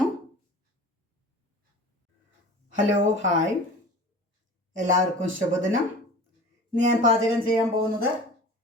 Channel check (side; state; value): both; normal; correlation 0.39